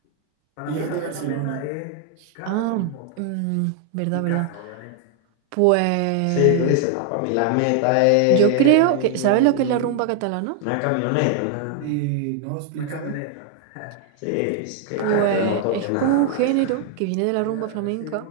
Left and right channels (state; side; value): different; both; correlation 0.00